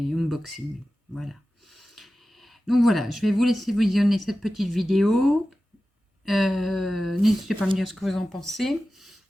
unboxings. Voilà. Donc voilà, je vais vous laisser visionner cette petite vidéo. N'hésitez pas à me dire ce que vous en pensez.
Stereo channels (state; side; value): normal; both; correlation 0.95